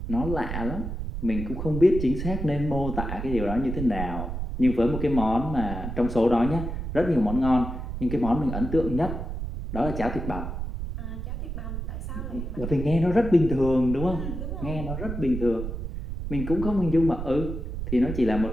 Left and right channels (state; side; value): noise; right; rumble, 5 dB below the sound